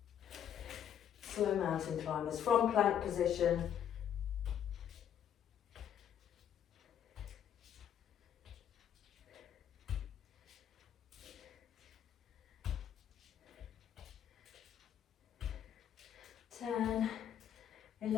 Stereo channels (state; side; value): quieter; right; 9.5 dB